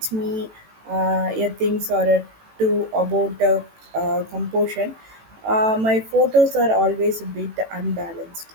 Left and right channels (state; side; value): late; left; 18 ms